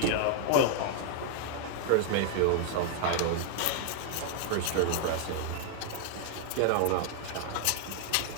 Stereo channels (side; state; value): both; different; correlation 0.00